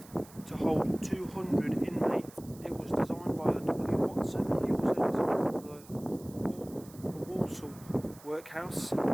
to hold 200 inmates. It was designed by W. Watson. He also designed the Walsall workhouse. In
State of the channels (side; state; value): right; noise; hiss, 22 dB below the sound